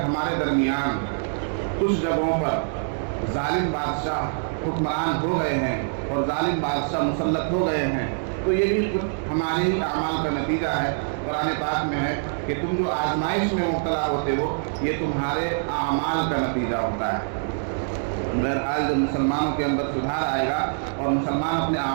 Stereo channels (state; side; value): silent; left; digital silence